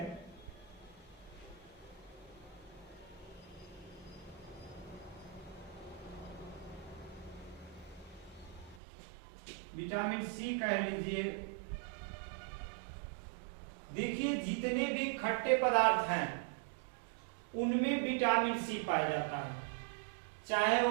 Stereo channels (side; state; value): left; drops out; at 8.8 s